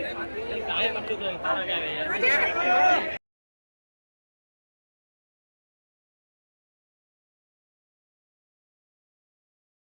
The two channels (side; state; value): both; inverted; correlation -1.00